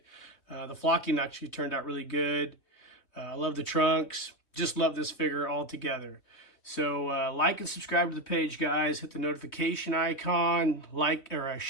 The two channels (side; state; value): right; late; 3.2 ms